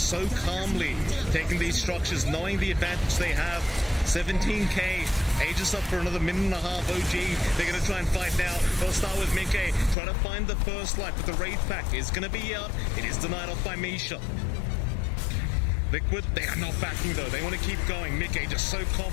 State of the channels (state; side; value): drops out; right; at 10.0 s